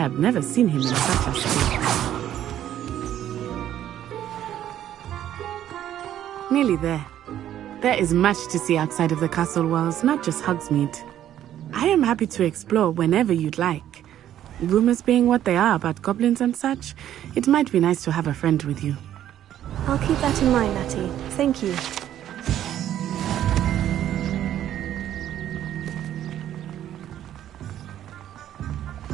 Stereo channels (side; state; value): left; quieter; 11.4 dB